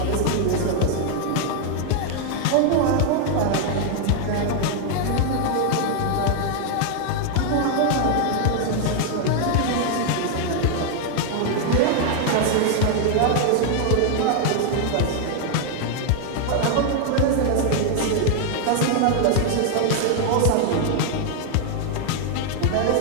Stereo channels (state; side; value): different; both; correlation 0.00